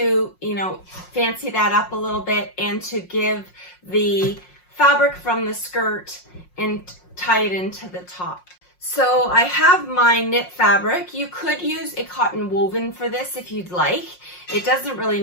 you know, fancy that up a little bit and to give the fabric from the skirt and tie it into the top. So I have my knit fabric. You could use a cotton woven for this if you'd like. It doesn't really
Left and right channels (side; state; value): right; late; 5.6 ms